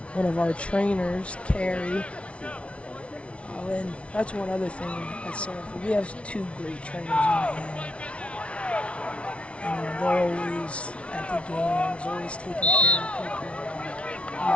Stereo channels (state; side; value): late; right; 0.061 ms